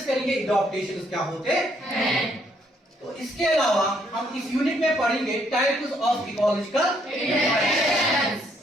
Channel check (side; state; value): both; normal; correlation 0.70